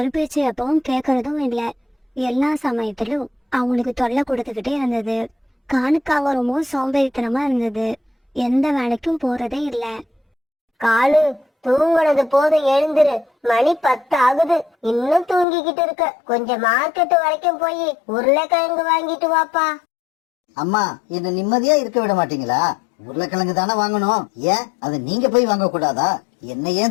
பேச்சு எப்பவும் கேட்கறதும் இல்லை. எல்லா சமயத்திலும் அவங்களுக்கு தொல்லை கொடுத்துக்கிட்டே இருந்தது. காலுக்காக ரொம்பவும் சோம்பேறித்தனமா இருந்தது. எந்த வேலைக்கும் போறதே இல்ல. காலு, தூங்குனது போதும், எழுந்துரு. மணி 10 ஆகுது, இன்னும் தூங்கிக்கிட்டு இருக்க. கொஞ்சம் மார்க்கெட் வரைக்கும் போய் உருளைக்கிழங்கு வாங்கிட்டு வாப்பா. அம்மா, என்ன நிம்மதியா இருக்க விட மாட்டீங்களா? உருளைக்கிழங்கு தானே வாங்கணும், ஏன் அதை நீங்க போய் வாங்க கூடாதா? என்ன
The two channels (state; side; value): drops out; right; at 15.5 s